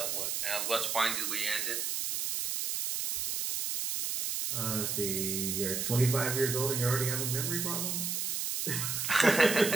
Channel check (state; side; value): noise; right; hiss, 1 dB below the sound